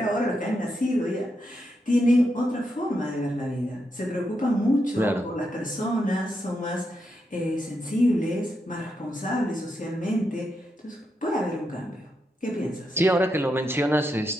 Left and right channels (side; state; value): both; normal; correlation 0.83